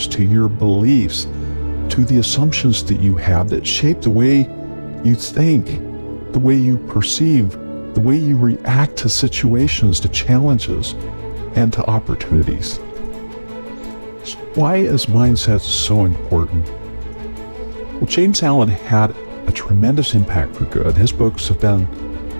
to your beliefs, to the assumptions that you have that shape the way you think, the way you perceive, the way you react to situations, to challenges, and to opportunities. So why is mindset so important? Well, James Allen had a tremendous impact for good. His books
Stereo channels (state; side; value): inverted; both; correlation -1.00